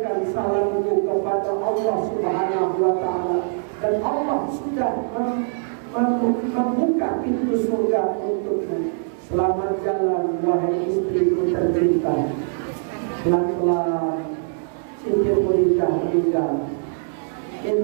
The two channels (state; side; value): silent; left; digital silence